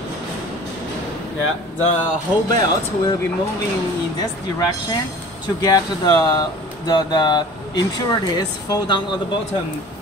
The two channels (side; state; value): both; normal; correlation 0.43